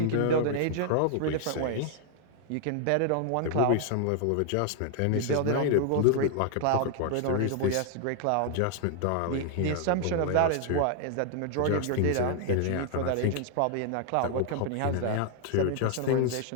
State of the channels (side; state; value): both; different; correlation 0.00